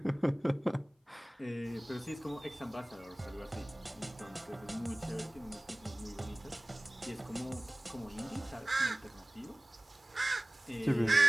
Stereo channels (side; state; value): both; normal; correlation 0.98